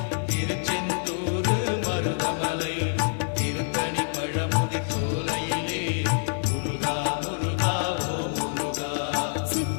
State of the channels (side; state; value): right; silent; 58 dB below the other